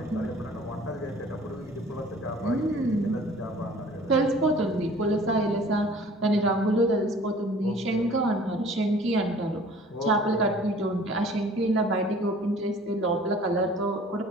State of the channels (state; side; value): normal; both; correlation 0.50